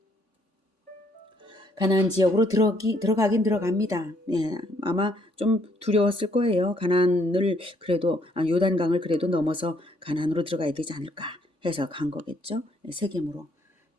가나안 지역으로 들어가긴 들어갑니다. 아마 좀 두려웠을 거예요. 가나안을 그래도 요단강을 그래도 넘어서 가나안으로 들어가야 되지 않을까 해서 간 거겠죠. 세겜으로.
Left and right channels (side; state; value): right; late; 3.5 ms